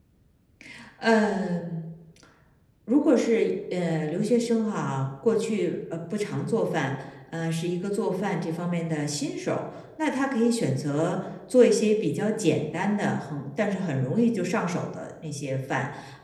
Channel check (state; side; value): identical; both; correlation 1.00